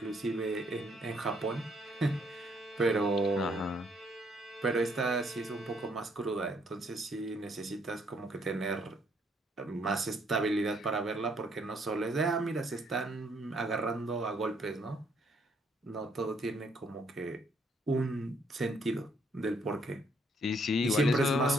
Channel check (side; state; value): both; normal; correlation 0.69